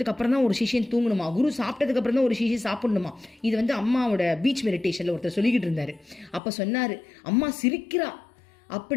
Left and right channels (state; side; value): drops out; right; at 6.4 s